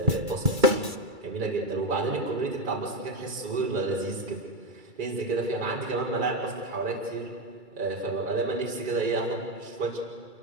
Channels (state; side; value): late; left; 2.3 ms